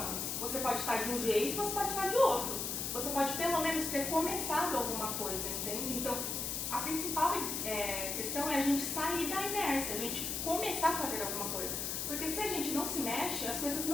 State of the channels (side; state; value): left; noise; hiss, 2 dB below the sound